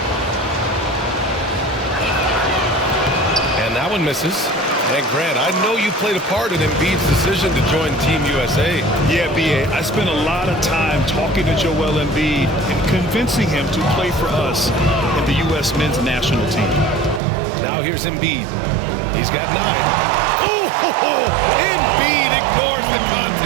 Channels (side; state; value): left; drops out; at 17.2 s